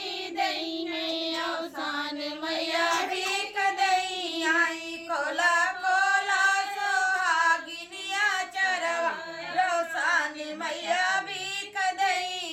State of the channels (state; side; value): identical; both; correlation 1.00